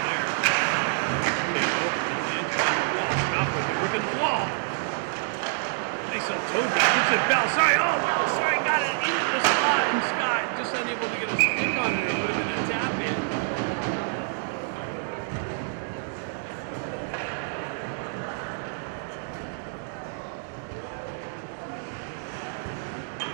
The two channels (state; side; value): silent; left; digital silence